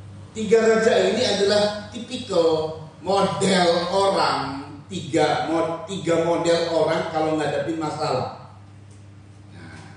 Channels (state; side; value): identical; both; correlation 1.00